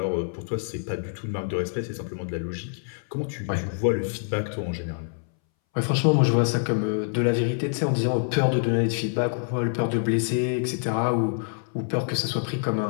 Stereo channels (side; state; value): right; silent; 61 dB below the other